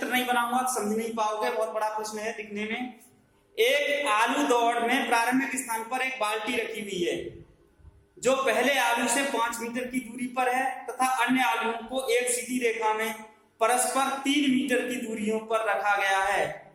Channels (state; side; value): identical; both; correlation 1.00